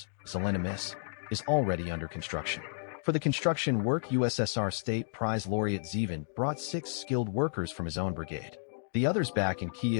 Zelenimis, is already under construction. For the construction work, USSR State Prize laureate Zevin brought 6 skilled workers from his own brigade. The others back in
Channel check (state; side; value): silent; right; digital silence